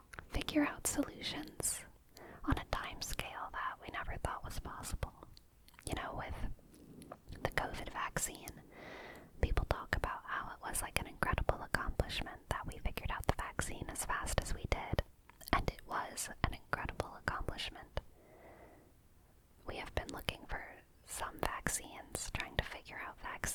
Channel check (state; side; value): identical; both; correlation 1.00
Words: figure out solutions on a time scale that we never thought was possible? With the COVID vaccine, people talk about how it was an incredible accomplishment that we figured out the vaccine as fast as we did. And it was an incredible accomplishment. We have been looking for some vaccines, trying to figure out